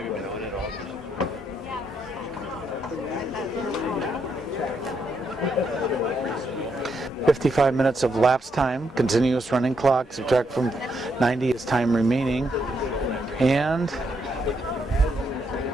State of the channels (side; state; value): both; normal; correlation 0.78